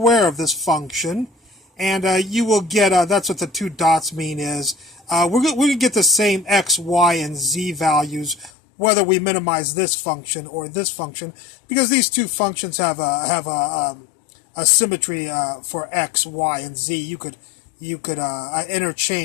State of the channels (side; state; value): right; drops out; at 8.5 s